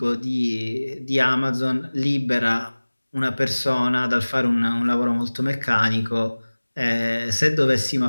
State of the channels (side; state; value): both; inverted; correlation -1.00